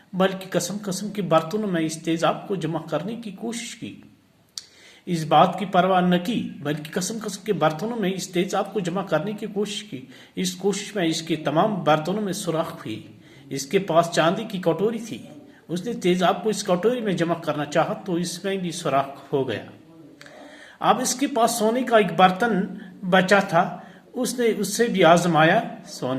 بلکہ قسم کے برتنوں میں اس تیزاب کو جمع کرنے کی کوشش کی۔ اس بات کی پرواہ نہ کی بلکہ قسم کے برتنوں میں اس تیزاب کو جمع کرنے کی کوشش کی۔ اس کوشش میں اس کے تمام برتنوں میں سوراخ ہوئی۔ اس کے پاس چاندی کی کٹوری تھی۔ اس نے تیزاب کو اس کٹوری میں جمع کرنا چاہا تو اس میں بھی سوراخ ہو گیا۔ اب اس کے پاس سونے کا ایک برتن بچا تھا۔ اس نے اس سے بھی آزمایا۔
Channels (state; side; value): identical; both; correlation 1.00